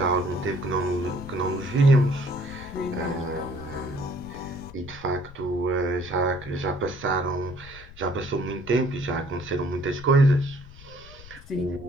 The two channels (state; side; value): noise; left; rumble, 18 dB below the sound